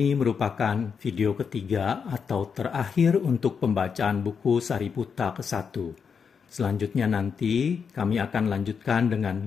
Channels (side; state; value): right; quieter; 6.3 dB